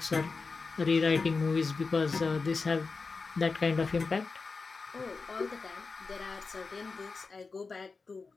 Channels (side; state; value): right; quieter; 4.3 dB